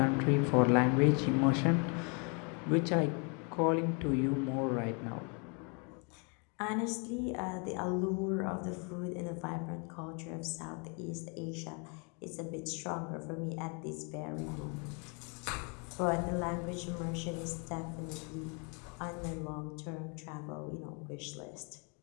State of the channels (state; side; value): quieter; right; 35.1 dB